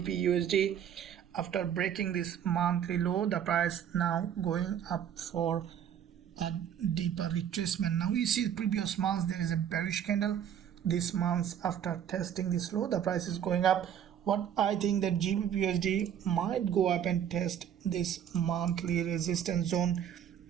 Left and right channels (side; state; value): left; quieter; 9.3 dB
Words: after breaking this monthly low, the price now going up for a deeper retracement. Now we see previous months there is a bearish candle. This month, after testing this low, the price is going up. What I think that GBPUSD might go up and test this monthly resistance zone,